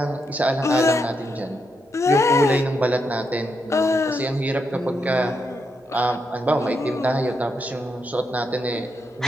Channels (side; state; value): both; normal; correlation 0.82